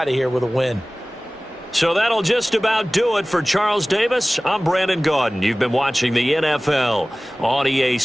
of here with a win. So that'll just about do it for Charles Davis. I'm Brandon Gaudin. You've been watching the NFL on EA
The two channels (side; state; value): both; normal; correlation 0.98